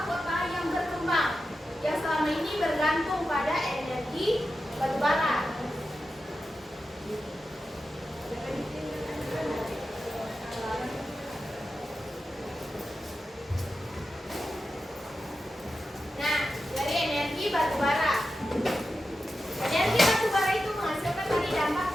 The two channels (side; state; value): both; normal; correlation 0.91